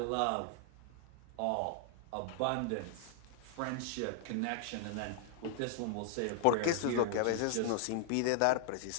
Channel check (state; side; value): different; both; correlation -0.01